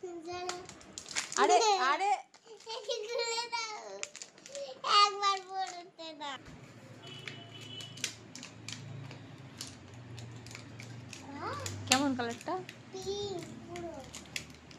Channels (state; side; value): identical; both; correlation 1.00